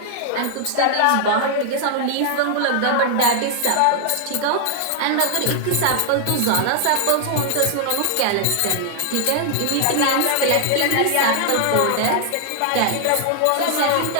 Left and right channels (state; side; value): different; both; correlation 0.00